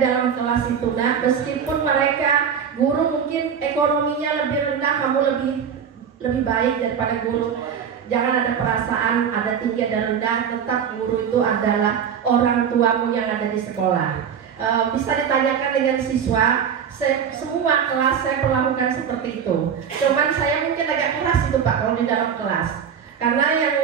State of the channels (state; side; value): quieter; left; 7.6 dB